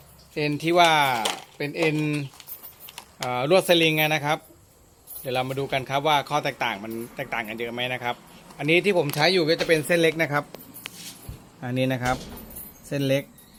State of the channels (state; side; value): identical; both; correlation 1.00